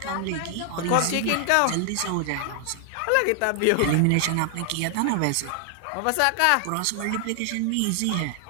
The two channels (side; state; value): both; different; correlation 0.00